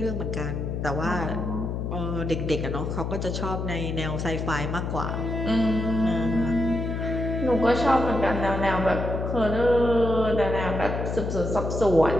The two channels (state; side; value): noise; left; hum, 3 dB below the sound